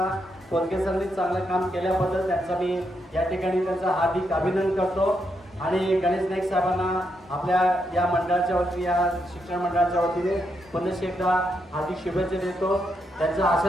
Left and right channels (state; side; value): normal; both; correlation 0.80